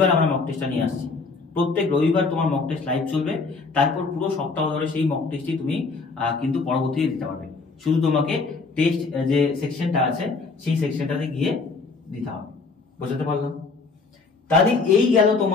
আমরা মক টেস্টটা নিয়ে আসছি। প্রত্যেক রবিবার তোমার মক টেস্ট লাইভ চলবে, তারপর পুরো সপ্তাহ ধরে সেই মক টেস্টই তুমি কিন্তু পরবর্তীতে দিতে পারবে। শুধু তোমাকে টেস্ট যে সেকশনটা আছে সেই সেকশনটাতে গিয়ে দিতে হবে। বুঝতে পারলাম? তাহলে এই গেল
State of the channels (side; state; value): right; quieter; 4.2 dB